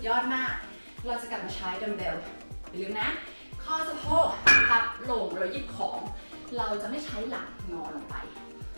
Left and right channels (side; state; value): both; inverted; correlation -1.00